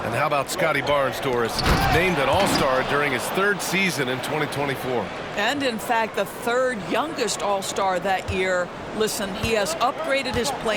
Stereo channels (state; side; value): identical; both; correlation 1.00